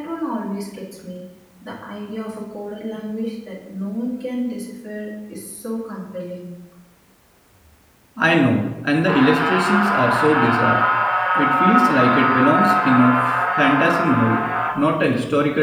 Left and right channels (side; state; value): both; identical; correlation 1.00